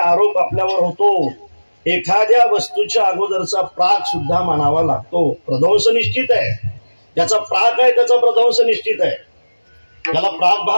आपल्यावर होतो. एखाद्या वस्तूच्या अगोदरचा प्राग सुद्धा मानावा लागतो. प्रध्वंस निश्चित आहे. ज्याचा प्राग आहे त्याचा प्रध्वंस निश्चित आहे. त्याला प्राग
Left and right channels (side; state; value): both; inverted; correlation -1.00